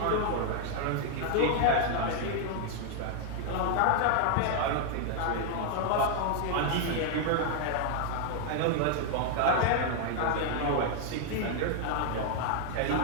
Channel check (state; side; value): different; both; correlation 0.00